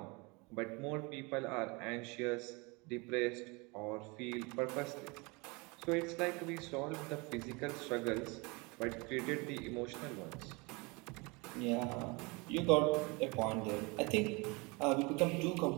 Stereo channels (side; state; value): left; quieter; 27.6 dB